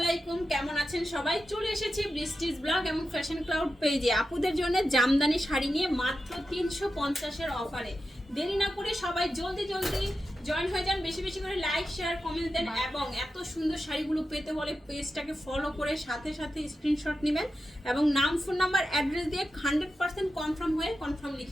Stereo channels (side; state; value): both; normal; correlation 0.91